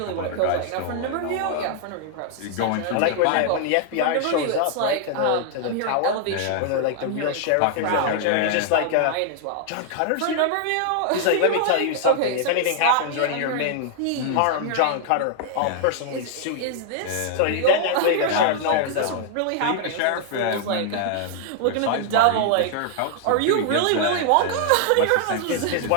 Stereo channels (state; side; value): different; both; correlation 0.00